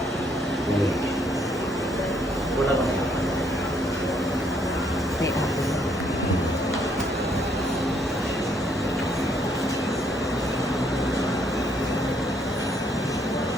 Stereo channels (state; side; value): normal; both; correlation 0.69